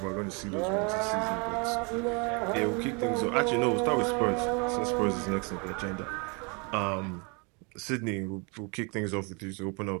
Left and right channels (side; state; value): left; quieter; 32.6 dB